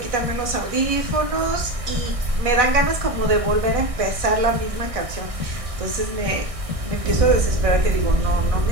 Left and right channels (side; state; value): left; late; 1.6 ms